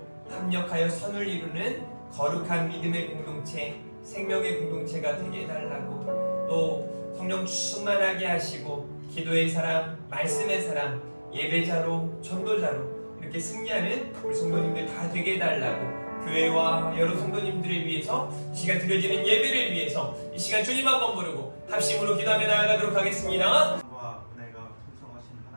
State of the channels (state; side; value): inverted; both; correlation -1.00